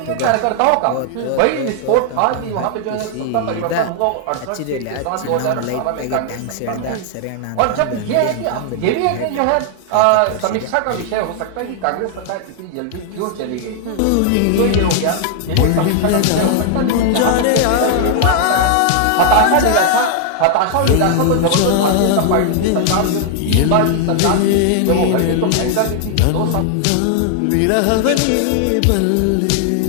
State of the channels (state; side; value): different; both; correlation 0.00